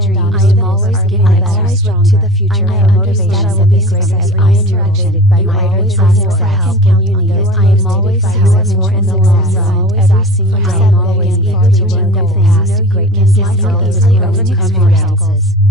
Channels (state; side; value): normal; both; correlation 0.38